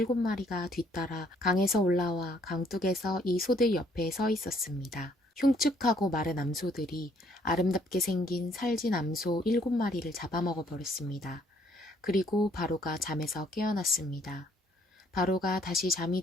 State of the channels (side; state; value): both; normal; correlation 0.65